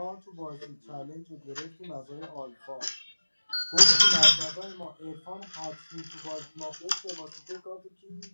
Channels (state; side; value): inverted; both; correlation -1.00